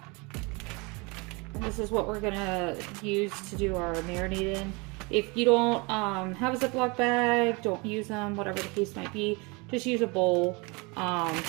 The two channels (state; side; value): quieter; left; 28.0 dB